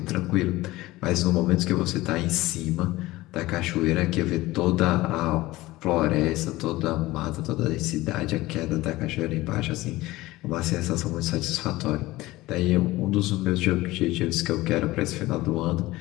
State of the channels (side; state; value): right; quieter; 18.6 dB